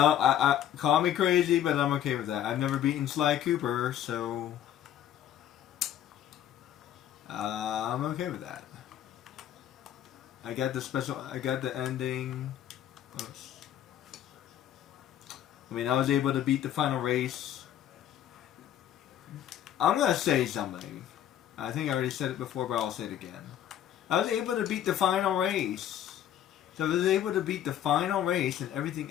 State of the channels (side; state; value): right; quieter; 10.9 dB